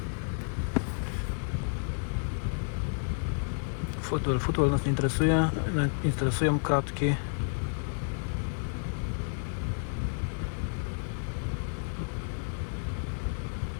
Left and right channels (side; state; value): right; silent; 57 dB below the other